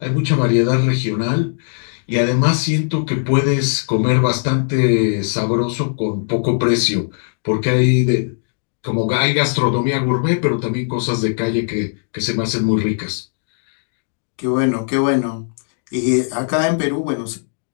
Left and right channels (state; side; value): silent; right; digital silence